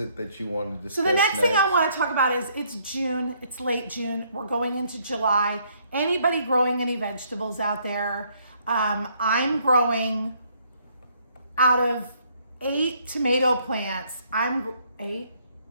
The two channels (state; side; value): inverted; both; correlation -0.67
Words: that you want to discuss? So the next thing I want to talk about is it's June. It's late June. We're going into July. Anybody growing any vegetables out there? I'm growing out of 8 tomato plants. I'm 8.